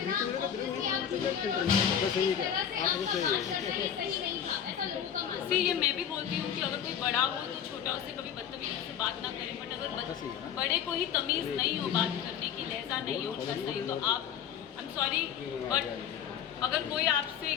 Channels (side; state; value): right; quieter; 8.9 dB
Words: ये मैं भी बोलती हूँ कि अगर कोई बड़ा हो तो छोटा उससे कभी बदतमीजी से बात ना करें, बट अगर बड़े को ही तमीज़ नहीं हो बात करने की, लहजा नहीं हो उनका सही, तो आप आई एम सॉरी बट अगर कोई आपसे